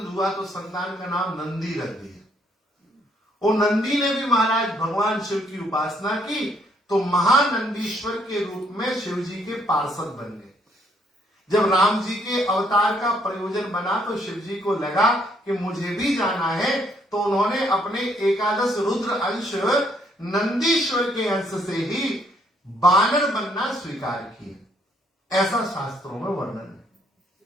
हुआ, तो संतान का नाम नंदी रख दिया। और नंदी ने भी महाराज भगवान शिव की उपासना की, तो महानंदीश्वर के रूप में शिव जी के पार्षद बन गए। जब राम जी के अवतार का प्रयोजन बना तो शिव जी को लगा कि मुझे भी जाना है, तो उन्होंने अपने 11 रुद्र अंश नंदीश्वर के अंश से ही बानर बनना स्वीकार किया, ऐसा शास्त्रों में वर्णन है।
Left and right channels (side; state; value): both; normal; correlation 0.69